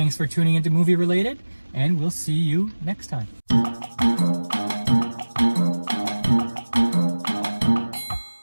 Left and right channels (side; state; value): both; inverted; correlation -1.00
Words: for tuning into Movie Related, and we'll see you next time.